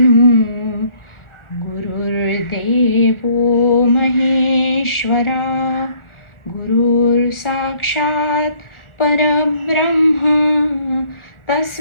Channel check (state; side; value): late; right; 1.4 ms